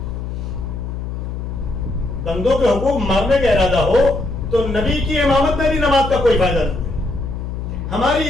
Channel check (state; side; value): noise; left; hum, 6 dB below the sound